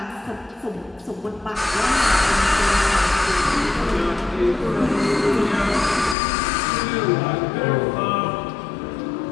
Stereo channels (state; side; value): drops out; right; at 6.2 s